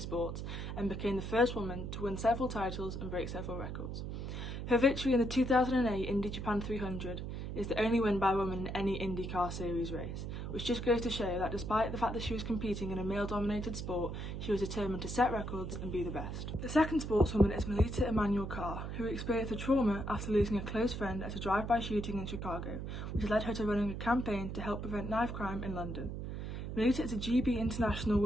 and became the first woman to win several titles and break several records. Her victory in the 2008 Indy Japan 300 is the only win by a woman in any IndyCar Series race, which just goes to show that despite the fact that she was competing in a male-dominated sport, she was determined to set records and be the best. The second sportswoman is Melissa Emanuel-Carr, who experienced a trauma after losing a close friend at a drive-by shooting in Chicago, which led her to running a campaign to help prevent knife crime in London. Melissa is a GB international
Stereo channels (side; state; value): right; noise; hum, 5 dB below the sound